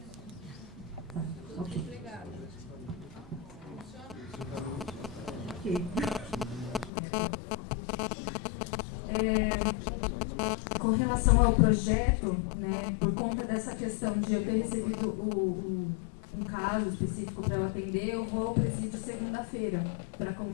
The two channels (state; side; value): drops out; right; at 6.9 s